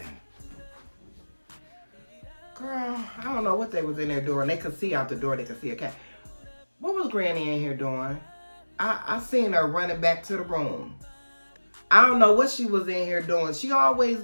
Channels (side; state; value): both; inverted; correlation -1.00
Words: Girl, I don't know what they was in there doing. They could see out the door. They could see a cat. What was Granny in here doing? I seen her running back to the room. I don't know what she was in here doing. She always